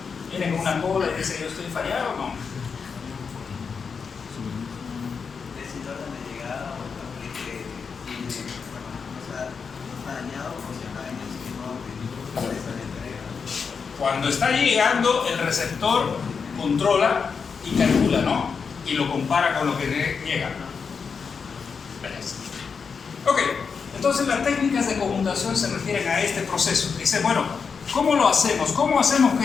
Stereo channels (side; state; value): right; quieter; 5.7 dB